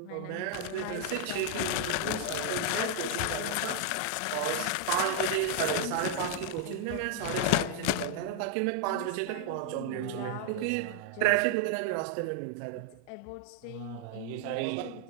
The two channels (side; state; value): both; different; correlation 0.00